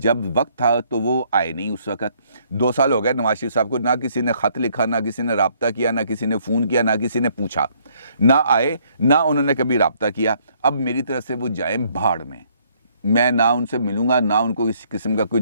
وقت تھا تو وہ آئے نہیں اس وقت۔ 2 سال ہو گئے نواز شریف صاحب کو، نہ کسی نے خط لکھا، نہ کسی نے رابطہ کیا، نہ کسی نے فون کیا، نہ کسی نے پوچھا، نہ آئے، نہ انہوں نے کبھی رابطہ کیا۔ اب میری طرف سے وہ جائیں بھاڑ میں نہ ان سے ملوں گا، نہ ان کو کسی قسم کا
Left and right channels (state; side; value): inverted; both; correlation -0.66